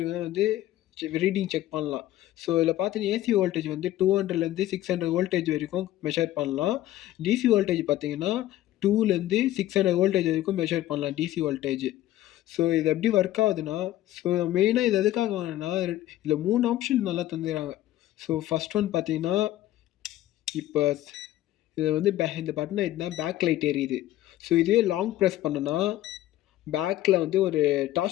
வந்து ரீடிங் செக் பண்ணலாம். ஸோ இதில் பார்த்தீங்கன்னா ஏசி வோல்டேஜ் வந்து 200லேருந்து 600 வோல்டேஜ் வரைக்கும் மெஷர் பண்ணலாம். டிசி வோல்டேஜ் பார்த்தீங்கன்னா 2லேருந்து 600 வோல்டேஜ் வரைக்கும் மெஷர் பண்ணலாம் டிசி வோல்டேஜ். ஸோ இது எப்படி ஒர்க் ஆகுதுன்னா, ஸோ மெயினாக இது எதுக்காக வாங்கினா இதில் 3 ஆப்ஷன் நல்லா தந்துடுறாங்க. ஸோ ஃபஸ்ட் ஒன் பார்த்தீங்கன்னா, இப்போ இது வந்து இந்த பட்டனை எதுனா பேக் லைட் எரியுது. ஸோ இதுவே லாங் ப்ரெஸ் பண்ணனா பேக்கில் வந்து ஒரு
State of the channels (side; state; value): right; quieter; 14.2 dB